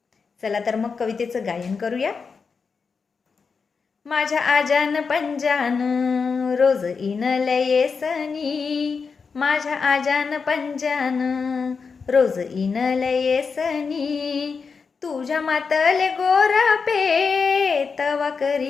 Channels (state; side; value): quieter; right; 5.3 dB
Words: चला तर मग कवितेचं गायन करूया. माझ्या आजान पंजान रोज इनले येसनी, माझ्या आजान पंजान रोज इनले येसनी, तुझ्या मातले गोरा पे तवा